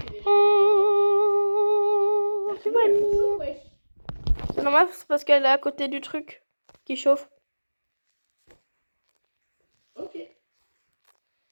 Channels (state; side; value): inverted; both; correlation -1.00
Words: déjà. Oh, tu vois, Bonjour, wesh. c'est normal, c'est parce qu'elle est à côté du truc qui chauffe. Ok.